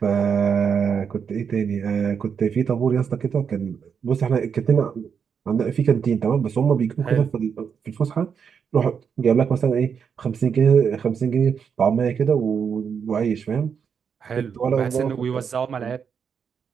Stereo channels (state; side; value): quieter; left; 6.8 dB